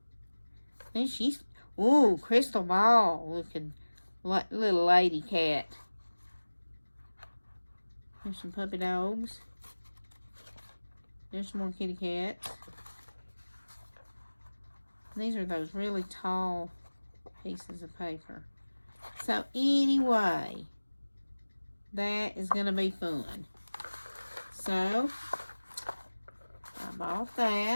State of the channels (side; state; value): both; inverted; correlation -1.00